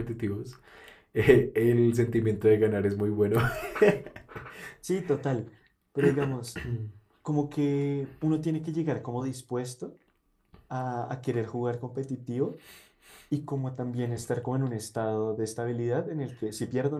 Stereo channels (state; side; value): identical; both; correlation 1.00